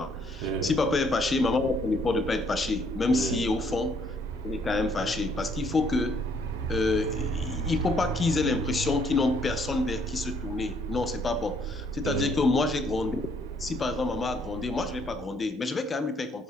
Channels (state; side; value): normal; both; correlation 0.67